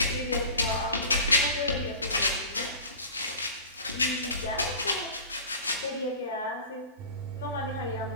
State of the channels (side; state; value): both; inverted; correlation -0.37